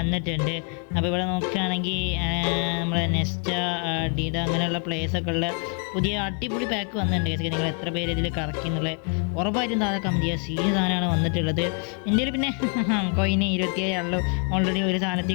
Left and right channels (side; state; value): right; quieter; 38.7 dB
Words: അപ്പോൾ ഇവിടെ നോക്കുകയാണെങ്കിൽ നമ്മുടെ നെസ്റ്റ ഡീഡ അങ്ങനെയുള്ള പ്ലേസൊക്കെ ഉള്ള പുതിയ അടിപൊളി പാക്ക് വന്നിട്ടുണ്ട്. കേസ് നിങ്ങൾ എത്ര പേര് ഇതിൽ കറക്കി എന്നുള്ളത് ഉറപ്പായിട്ടും താഴെ കമൻറ്റ് ചെയ്യുക. സീൻ സാധനമാണ് വന്നിട്ടുള്ളത്. എൻ്റെ പിന്നെ കോയിന് 27 ആണല്ലോ ഓൾറെഡി ഒരു